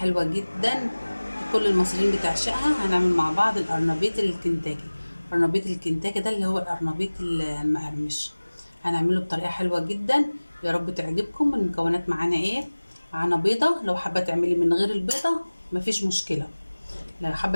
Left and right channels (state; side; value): inverted; both; correlation -1.00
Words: جدا كل المصريين بتعشقها. هنعمل مع بعض القرنبيط الكنتاكي. قرنبيط الكنتاكي ده اللي هو القرنبيط المقرمش، هنعمله بطريقه حلوه جدا. يا رب تعجبكم. المكونات معانا ايه؟ معانا بيضه، لو حابه تعملي من غير البيضه مفيش مشكله، لو